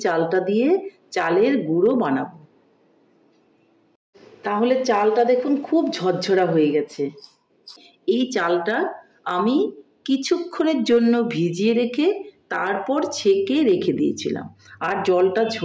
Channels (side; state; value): both; identical; correlation 1.00